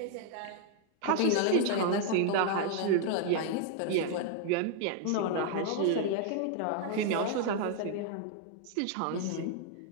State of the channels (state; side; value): different; both; correlation 0.00